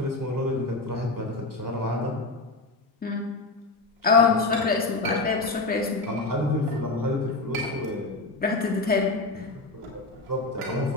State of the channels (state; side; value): quieter; right; 3.3 dB